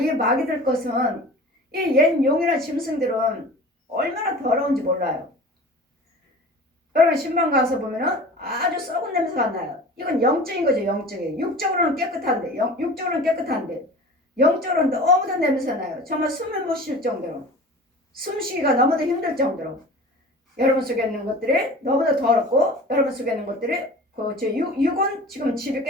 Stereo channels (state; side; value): normal; both; correlation 0.39